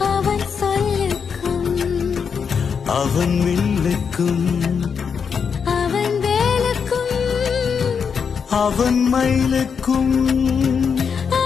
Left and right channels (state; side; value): quieter; right; 6.4 dB